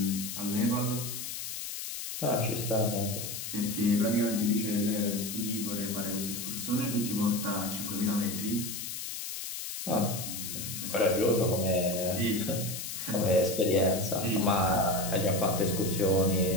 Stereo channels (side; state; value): left; noise; hiss, 6 dB below the sound